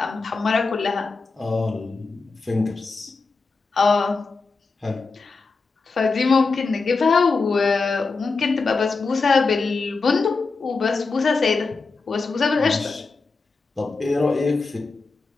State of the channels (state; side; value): quieter; right; 4.2 dB